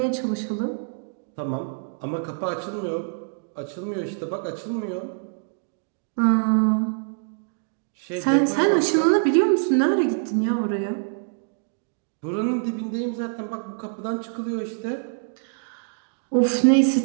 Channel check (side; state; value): left; silent; digital silence